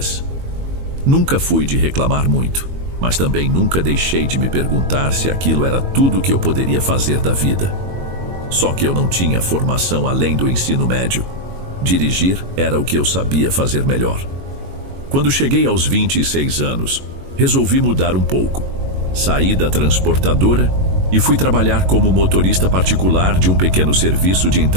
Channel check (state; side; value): late; left; 22 ms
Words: Nunca fui de reclamar muito, mas também nunca deixei de me perguntar se aquilo era tudo que eu poderia fazer da vida. Só que eu não tinha formação além do ensino médio. Dirigir era o que eu sabia fazer melhor. Quando cheguei aos 26 anos, resolvi mudar um pouco. Saí da transportadora e fui trabalhar como motorista particular de um pequeno serviço de